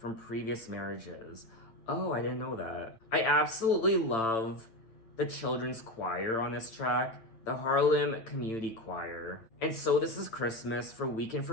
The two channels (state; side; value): late; right; 8.9 ms